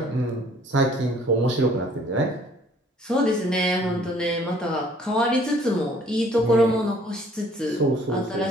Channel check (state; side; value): normal; both; correlation 0.58